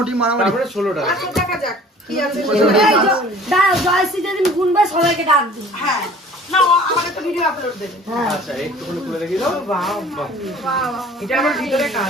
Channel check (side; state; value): both; normal; correlation 0.49